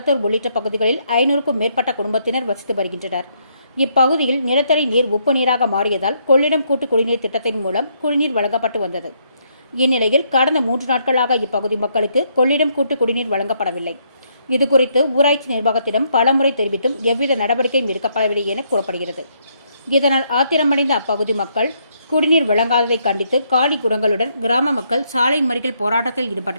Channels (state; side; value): inverted; both; correlation -0.73